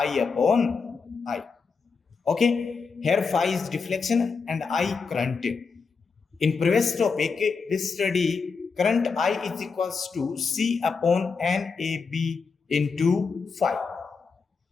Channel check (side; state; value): right; quieter; 5.0 dB